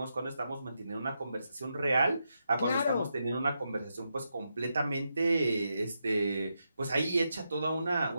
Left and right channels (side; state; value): both; inverted; correlation -0.84